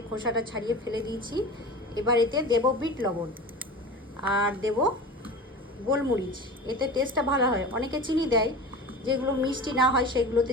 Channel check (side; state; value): both; normal; correlation 0.32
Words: খোসাটা ছাড়িয়ে ফেলে দিয়েছি। এবার এতে দেবো বিট লবণ আর দেব গোলমরিচ, এতে টেস্টটা ভালো হয়। অনেকে চিনি দেয়, যেগুলো মিষ্টি না হয় সেগুলোতে